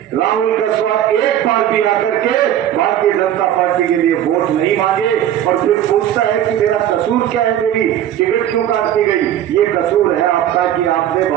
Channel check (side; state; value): left; quieter; 11.2 dB